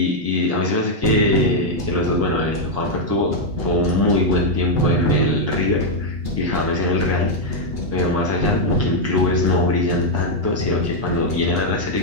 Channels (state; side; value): late; left; 8.2 ms